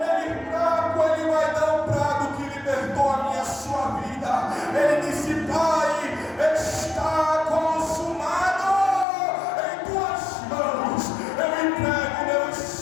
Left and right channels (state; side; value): drops out; right; at 9.1 s